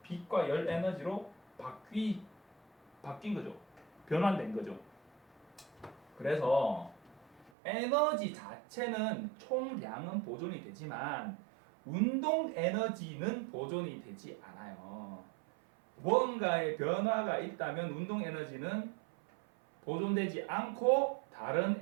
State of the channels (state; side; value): drops out; left; at 7.5 s